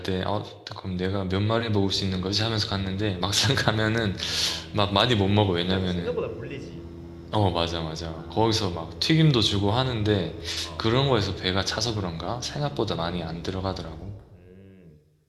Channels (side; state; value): both; identical; correlation 1.00